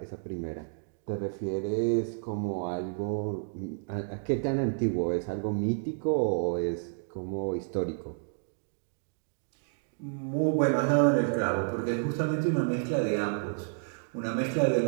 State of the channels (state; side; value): silent; left; digital silence